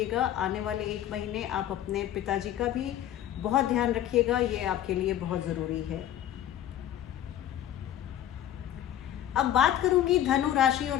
आने वाले 1 महीने आप अपने पिताजी का भी बहुत ध्यान रखिएगा, ये आपके लिए बहुत ज़रूरी है। अब बात करूंगी धनु राशि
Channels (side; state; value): right; quieter; 11.5 dB